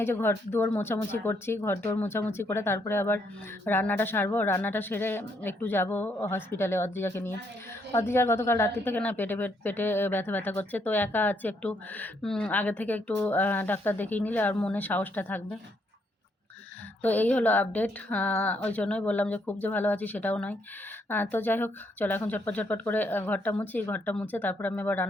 এই যে ঘর দুয়ার মোছামুছি করছি, ঘর দুয়ার মোছামুছি করে তারপরে আবার রান্নাটা সারবো। রান্নাটা সেরে একটু যাব হসপিটালে অদ্রিজাকে নিয়ে। অদ্রিজার গতকাল রাত্রি থেকে না পেটে ব্যথা করছে, তো একা আছে একটু, আগে থেকে একটু ডাক্তার দেখিয়ে নিলে আর মনে সাহসটা থাকবে। তো এই হলো আপডেট। ওই জন্যই বললাম যে খুব যে ভালো আছি সেটাও নয়। তো যাই হোক, চলো এখন ঝটপট করে ঘরটা মুছে তারপর আমি আবার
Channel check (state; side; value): normal; both; correlation 0.73